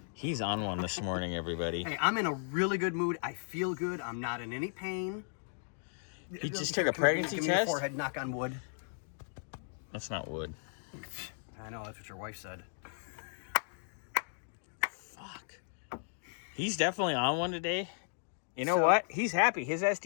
He's on one this morning, everybody. Hey, I'm in a really good mood. I feel good. I'm not in any pain. He just took a pregnancy Give me your test? forehead, knock on wood. That's not wood. I know, that's what your wife said. Fuck. He's definitely on one today. You know what? He's happy. His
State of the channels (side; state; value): right; silent; digital silence